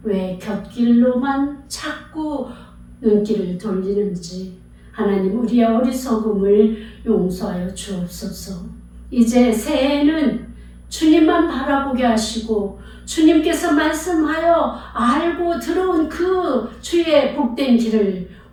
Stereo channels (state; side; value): identical; both; correlation 1.00